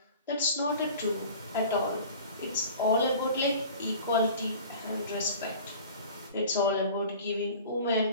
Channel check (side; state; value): both; inverted; correlation -0.42